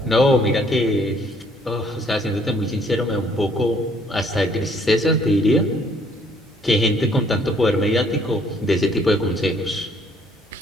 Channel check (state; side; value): normal; both; correlation 0.63